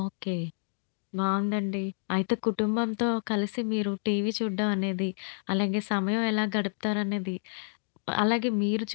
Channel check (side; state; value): right; silent; digital silence